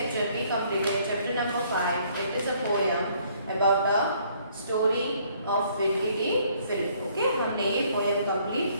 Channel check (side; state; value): both; inverted; correlation -0.64